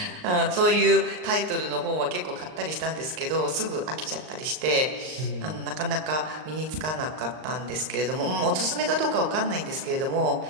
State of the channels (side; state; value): left; late; 39 ms